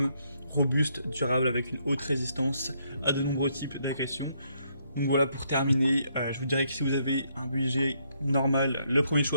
robuste, durable, avec une haute résistance à de nombreux types d'agressions. Donc voilà, pour terminer, je vous dirais que si vous avez un budget normal, le premier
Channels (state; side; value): inverted; both; correlation -0.73